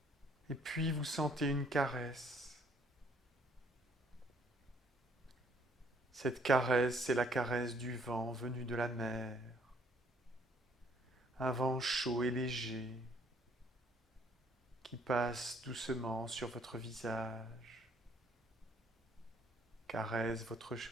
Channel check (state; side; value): normal; both; correlation 0.64